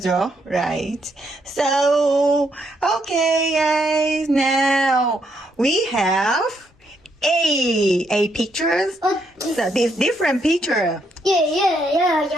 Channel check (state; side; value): normal; both; correlation 0.75